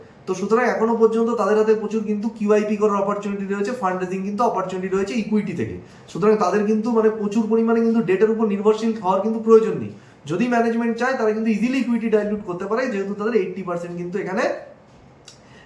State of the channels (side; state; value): both; identical; correlation 1.00